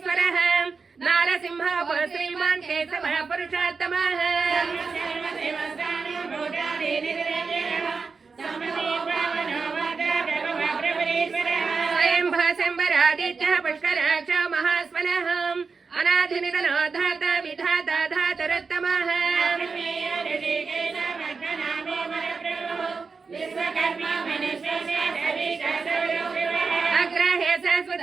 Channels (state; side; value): quieter; left; 4.8 dB